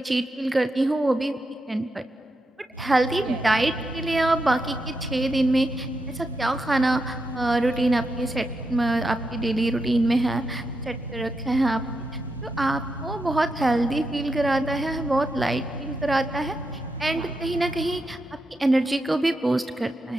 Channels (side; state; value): both; normal; correlation 0.85